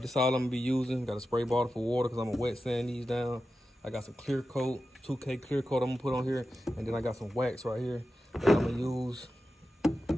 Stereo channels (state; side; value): normal; both; correlation 0.92